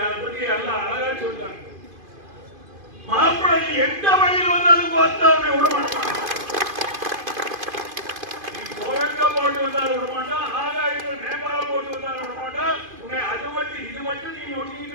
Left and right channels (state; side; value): late; left; 2.5 ms